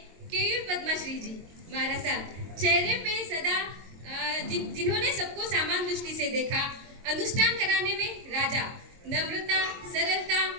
केयूर पद्माश्री जी महाराज साहब, चेहरे पे सदा जिन्होंने सबको समान दृष्टि से देखा। अनुष्ठान कराने में राजा, नम्रता, सरलता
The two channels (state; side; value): late; left; 22 ms